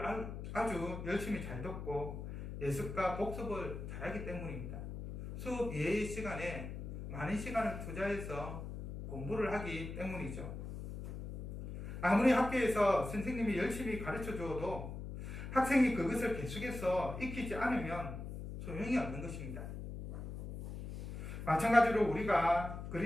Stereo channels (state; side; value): noise; left; hum, 8 dB below the sound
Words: 아주 열심히 잘 듣고 예습과 복습을 잘하기 때문입니다. 수업 이외의 시간에 많은 시간을 투자해서 공부를 하기 때문이죠. 아무리 학교에서 선생님이 열심히 가르쳐 주어도 학생이 그것을 계속해서 익히지 않으면 소용이 없는 것입니다. 마찬가지로 우리가